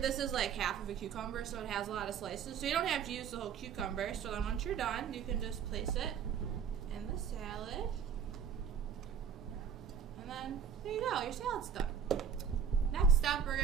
is like half of a cucumber, so it has a lot of slices. So you don't have to use the whole cucumber. So then once you're done, you can just place it in the salad. And then there you go, your salad's done. Next step we're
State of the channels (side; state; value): left; quieter; 7.5 dB